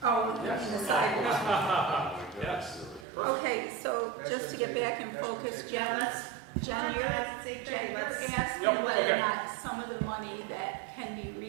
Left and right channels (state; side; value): drops out; left; at 3.1 s